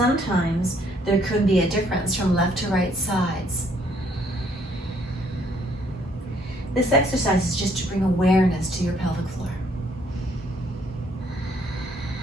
there could be a difference from left to right sides. This exercise is just to bring awareness to your pelvic floor.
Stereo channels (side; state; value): both; normal; correlation 0.66